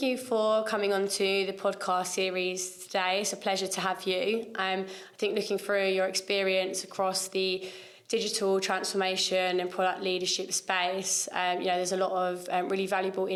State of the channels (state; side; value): identical; both; correlation 1.00